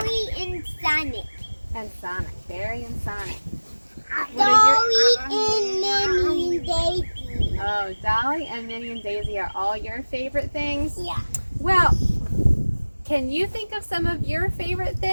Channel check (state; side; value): inverted; both; correlation -1.00